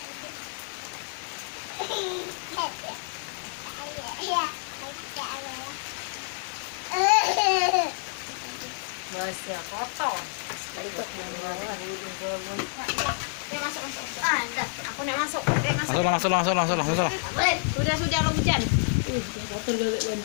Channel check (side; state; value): right; silent; 59 dB below the other